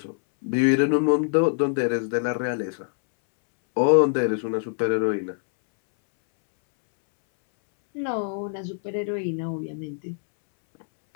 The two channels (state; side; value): silent; right; 62 dB below the other